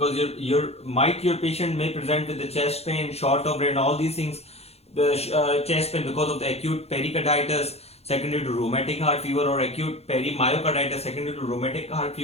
your patient may present with the chest pain, short of breath, and all these things. The chest pain because of the acute pericarditis secondary to rheumatic heart fever, or acute perimyocarditis secondary to rheumatic heart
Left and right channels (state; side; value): late; right; 0.30 ms